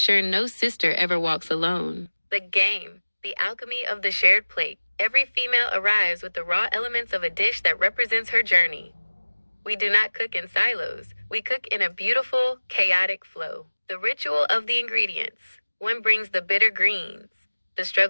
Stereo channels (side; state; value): both; inverted; correlation -1.00